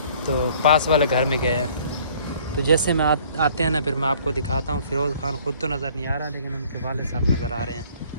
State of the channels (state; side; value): inverted; both; correlation -0.56